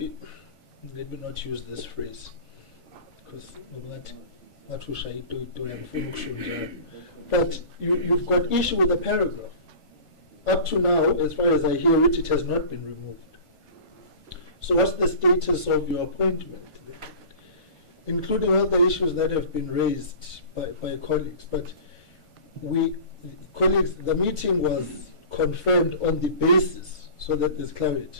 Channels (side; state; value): right; late; 1.4 ms